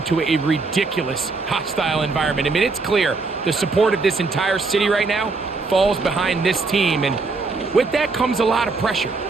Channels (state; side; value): quieter; left; 4.0 dB